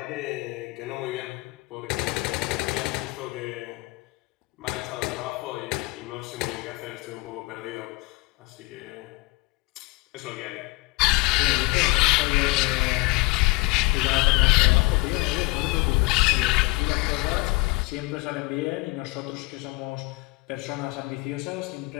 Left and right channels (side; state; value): right; quieter; 24.6 dB